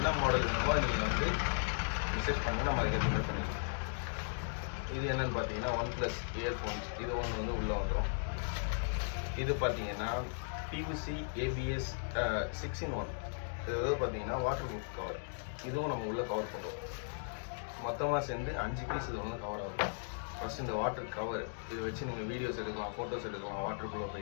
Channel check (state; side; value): silent; right; digital silence